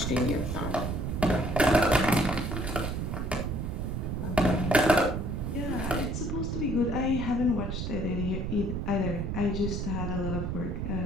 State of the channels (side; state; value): right; noise; rumble, 2 dB below the sound